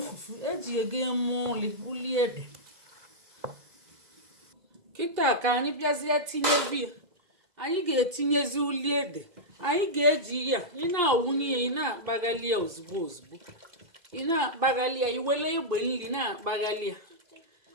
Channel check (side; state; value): left; late; 2.0 ms